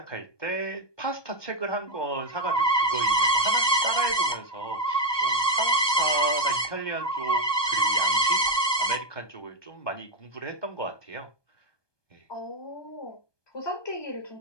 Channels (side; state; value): right; late; 1.2 ms